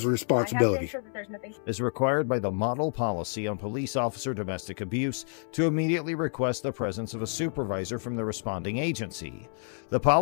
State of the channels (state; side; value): silent; right; 59 dB below the other